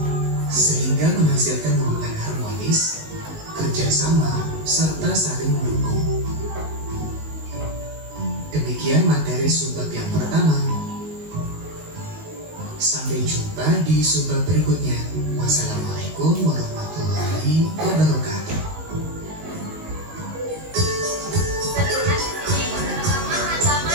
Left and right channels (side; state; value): left; late; 19 ms